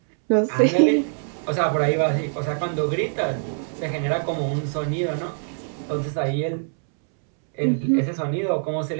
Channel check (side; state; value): left; silent; 63 dB below the other